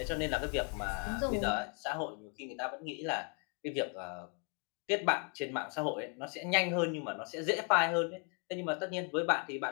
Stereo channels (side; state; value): right; quieter; 37.0 dB